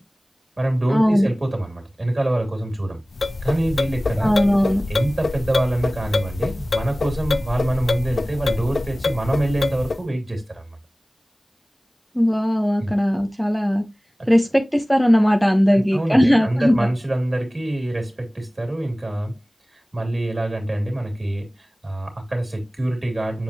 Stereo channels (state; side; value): normal; both; correlation 0.98